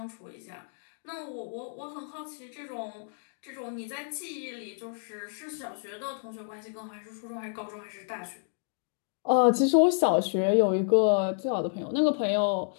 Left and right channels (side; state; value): right; silent; digital silence